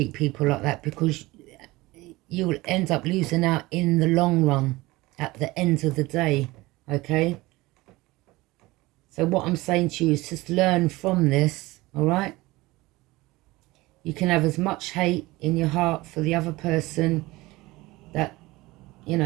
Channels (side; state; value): left; quieter; 20.5 dB